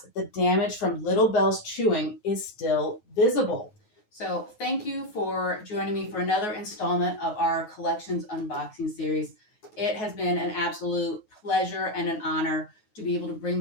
the damage from Little Bell's chewing is still visible. So thank you for joining me for another installment of our Collections Unboxing series. It has been an absolute pleasure and an honor to be able to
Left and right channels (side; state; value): right; late; 9.4 ms